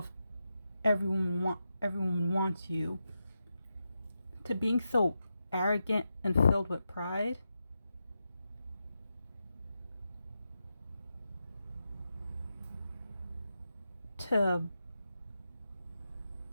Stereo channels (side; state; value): both; inverted; correlation -0.88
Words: everyone wants you, to being so arrogant and filled with pride. To